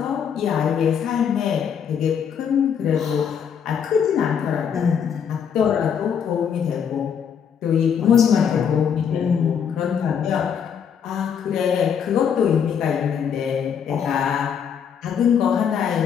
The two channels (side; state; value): right; quieter; 7.6 dB